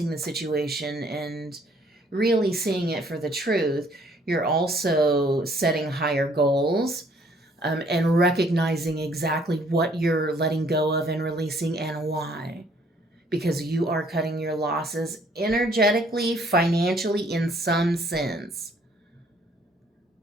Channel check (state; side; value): normal; both; correlation 0.62